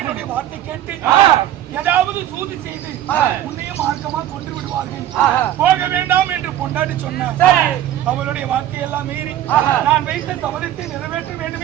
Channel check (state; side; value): quieter; left; 12.2 dB